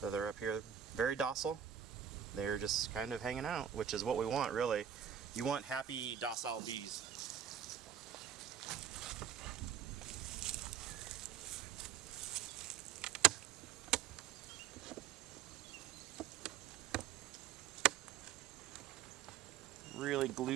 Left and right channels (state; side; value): quieter; left; 9.1 dB